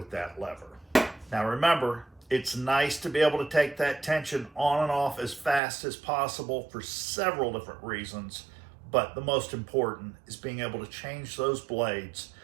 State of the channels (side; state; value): left; drops out; at 5.6 s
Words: that lever. Now remember, it's nice to be able to take that tension on and off as fast as possible for several different reasons, but the most important is being able to change those blades